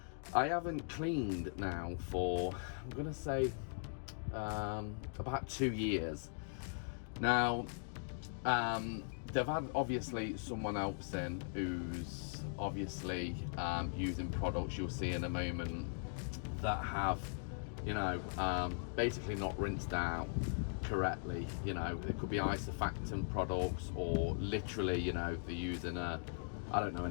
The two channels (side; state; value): right; silent; digital silence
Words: I haven't cleaned now for, I'm gonna say about 2 years now. They've had obviously someone else in who's obviously using products you'll see in a moment that have, you know, basically not rinsed out correctly. You know, it could be isofactant products, or literally, you know, they're using